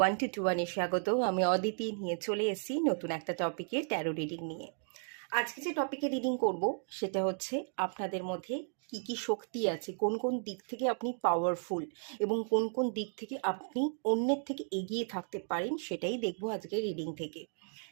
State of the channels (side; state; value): left; silent; 55 dB below the other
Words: 1 to 1 স্বাগত। আমি অদিতি নিয়ে চলে এসেছি নতুন একটা টপিকে, ট্যারো রিডিং নিয়ে। আজকে যে টপিকে রিডিং করব সেটা হচ্ছে আপনাদের মধ্যে কি কি শক্তি আছে, কোন কোন দিক থেকে আপনি পাওয়ারফুল এবং কোন কোন দিক থেকে আপনি অন্যের থেকে এগিয়ে থাকতে পারেন, সেটাই দেখবো আজকে রিডিং থেকে।